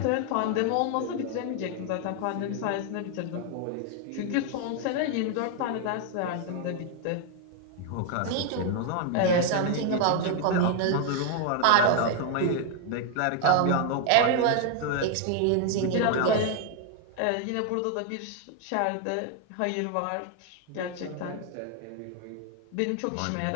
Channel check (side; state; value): both; different; correlation 0.00